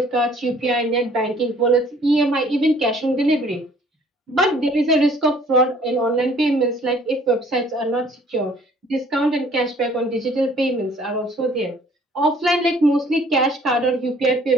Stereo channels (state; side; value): normal; both; correlation 0.57